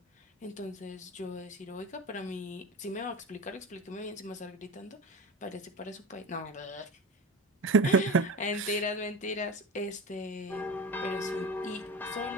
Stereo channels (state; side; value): normal; both; correlation 0.30